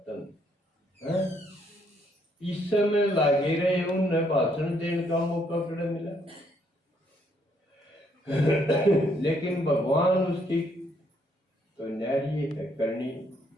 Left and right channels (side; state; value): both; normal; correlation 0.70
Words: है। इस समय लागे रहे उन्हें भाषण देने का मौका कड़ा मिला। लेकिन भगवान उसकी तो न्यारी है करनी,